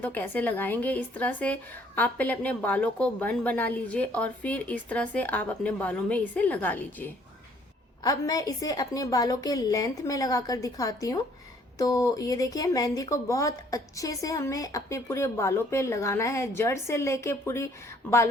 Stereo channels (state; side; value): normal; both; correlation 0.62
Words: तो कैसे लगाएंगे। इस तरह से आप पहले अपने बालों को बन बना लीजिए, और फिर इस तरह से आप अपने बालों में इसे लगा लीजिए। अब मैं इसे अपने बालों के लेंथ में लगाकर दिखाती हूँ। तो ये देखिए, मेहंदी को बहुत अच्छे से हमें अपने पूरे बालों पे लगाना है, जड़ से लेके पूरी